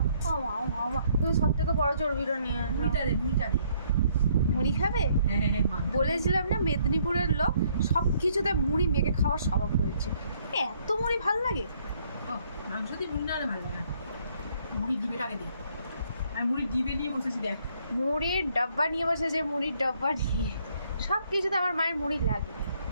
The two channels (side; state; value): both; inverted; correlation -0.67